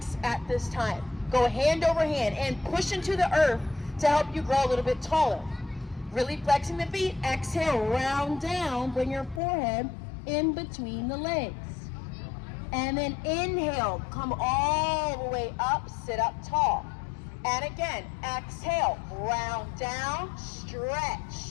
at this time. Go hand over hand and push into the earth to help you grow a little bit taller. Really flexing the feet. Exhale, round down. Bring your forehead in between the legs. And then inhale, come all the way up, sit up tall. And again, exhale, round down, stretch,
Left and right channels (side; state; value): right; drops out; at 9.4 s